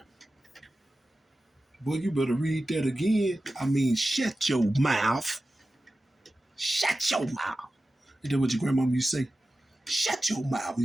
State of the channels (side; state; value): both; normal; correlation 0.94